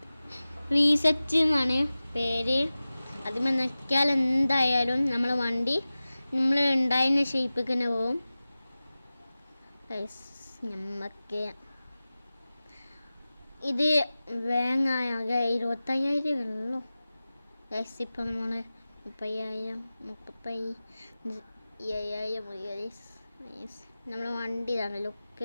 റീസെറ്റ് എന്നാണ് പേര്. അതിൽ നിൽക്കിയാൽ എന്തായാലും നമ്മളെ വണ്ടി നമ്മൾ ഉണ്ടായിരുന്ന ഷേപ്പിൽ തന്നെ പോവും. നമുക്ക് ഇത് വേങ്ങായ 25,000 ഉള്ളൂ ഗൈസ്. ഇപ്പം നമ്മൾ 30,000 35,000 നമ്മൾ വണ്ടി ഇതാണ്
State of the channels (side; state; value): both; inverted; correlation -0.96